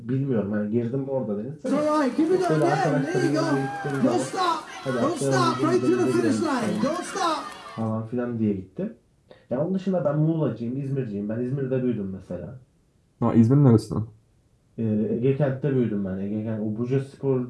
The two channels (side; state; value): both; identical; correlation 1.00